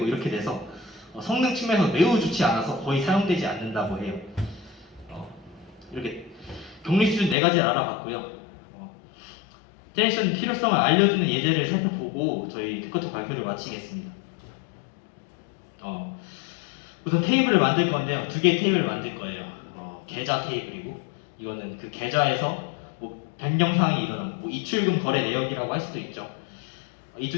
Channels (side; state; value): right; drops out; at 7.4 s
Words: 이렇게 돼서 성능 측면에서 매우 좋지 않아서 거의 사용되지 않는다고 해요. 이렇게 격리 수준 4가지를 알아봤고요. 트랜지션 필요성을 알려주는 예제를 살펴보고 저희 테크토 발표를 마치겠습니다. 우선 테이블을 만들 건데요. 2개의 테이블을 만들 거예요. 계좌 테이블이고 이거는 그 계좌에서 뭐 변경사항이 일어난 뭐 입출금 거래 내역이라고 할 수도 있죠. 이